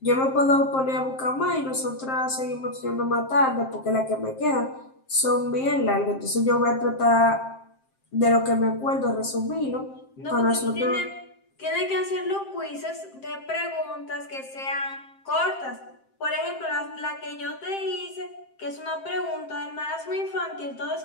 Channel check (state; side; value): late; right; 7.6 ms